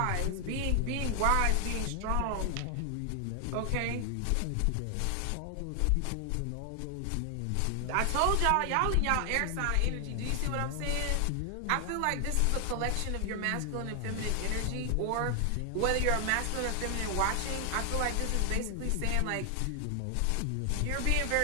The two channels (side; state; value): both; different; correlation 0.00